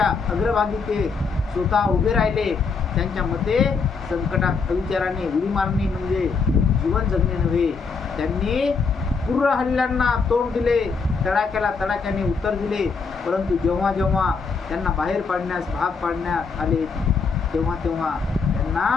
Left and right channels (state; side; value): quieter; right; 5.0 dB